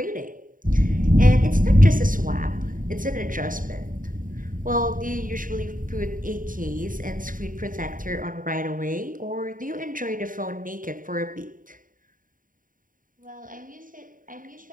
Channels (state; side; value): late; left; 0.39 ms